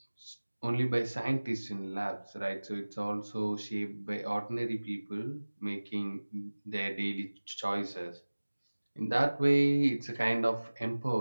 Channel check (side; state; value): both; inverted; correlation -1.00